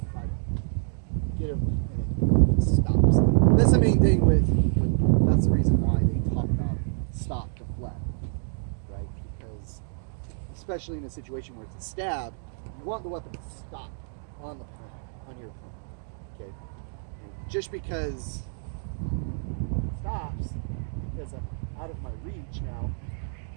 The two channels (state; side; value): silent; left; digital silence